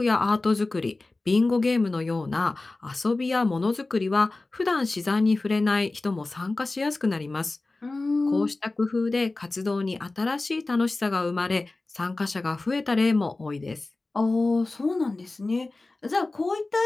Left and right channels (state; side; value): quieter; right; 3.2 dB